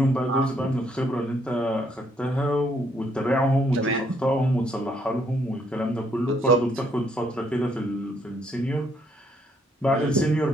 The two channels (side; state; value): both; normal; correlation 0.70